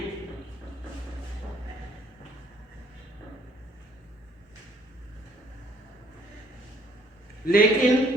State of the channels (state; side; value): normal; both; correlation 0.61